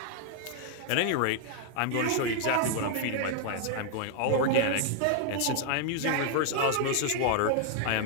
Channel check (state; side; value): different; both; correlation 0.00